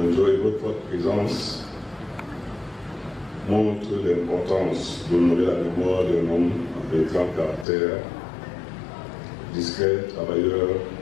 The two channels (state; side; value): drops out; right; at 7.7 s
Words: et votre forte présence montre l'importance d'honorer la mémoire d'un homme de grand caractère, discret, travailleur,